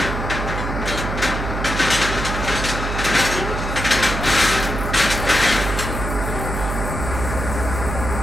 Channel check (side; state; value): right; noise; hum, 4 dB below the sound